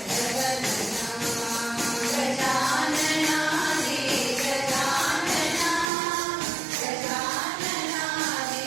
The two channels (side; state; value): left; drops out; at 5.9 s